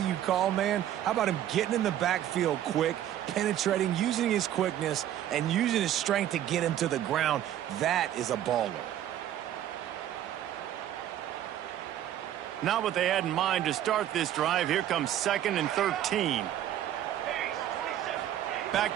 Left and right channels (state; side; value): quieter; left; 11.7 dB